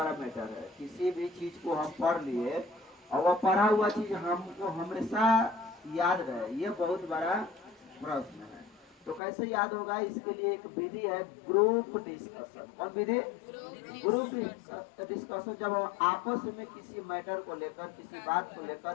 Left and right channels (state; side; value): drops out; right; at 9.2 s